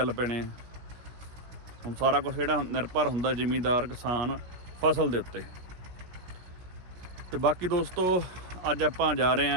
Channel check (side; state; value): left; late; 17 ms